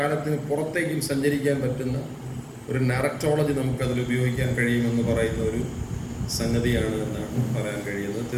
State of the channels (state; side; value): identical; both; correlation 1.00